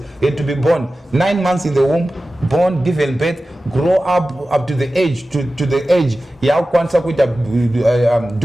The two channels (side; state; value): both; normal; correlation 0.95